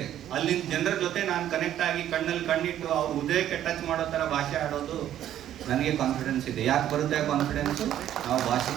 ಅಲ್ಲಿನ ಜನರ ಜೊತೆ ನಾನು ಕನೆಕ್ಟ್ ಆಗಿ ಕಣ್ಣಲ್ಲಿ ಕಣ್ಣಿಟ್ಟು ಅವ್ರ ಹೃದಯಕ್ಕೆ ಟಚ್ ಮಾಡೋ ಥರ ಭಾಷೆ ಆಡೋದು ನನಗೆ ಕಾನ್ಫಿಡೆನ್ಸ್ ಇದೆ. ಯಾಕೆ ಬರುತ್ತೆ ಕಾನ್ಫಿಡೆನ್ಸು? ನಾವು ಭಾಷೆ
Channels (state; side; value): quieter; left; 11.5 dB